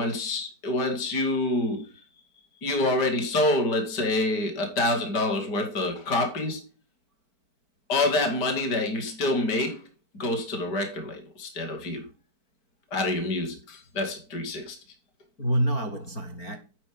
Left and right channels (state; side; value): late; right; 4.5 ms